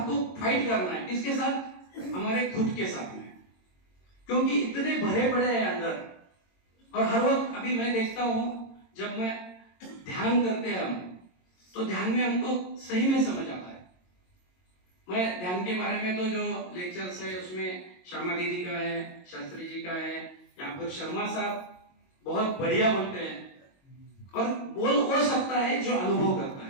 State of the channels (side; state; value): right; late; 22 ms